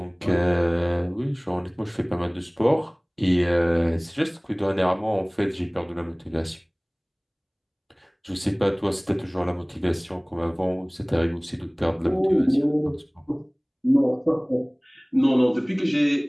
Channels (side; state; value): both; identical; correlation 1.00